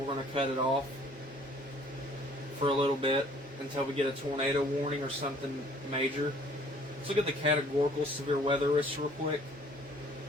going to cut it off for a little bit until we get a tornado warning or something major. Let's look at the categorical severe weather risk real quick.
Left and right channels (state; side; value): normal; both; correlation 0.56